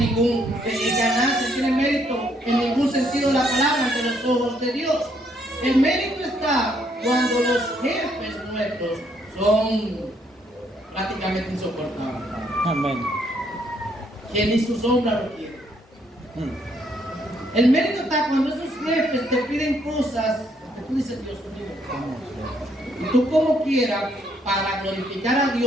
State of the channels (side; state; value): both; normal; correlation 0.71